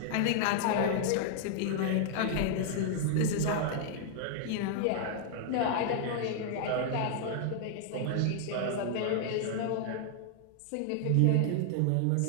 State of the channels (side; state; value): both; different; correlation 0.00